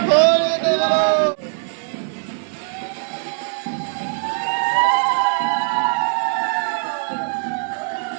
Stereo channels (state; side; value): silent; left; digital silence